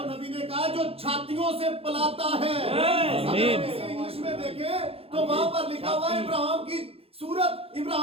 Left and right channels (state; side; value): late; left; 0.28 ms